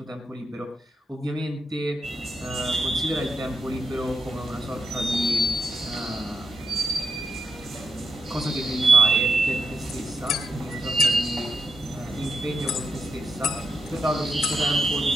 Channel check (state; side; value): normal; both; correlation 0.84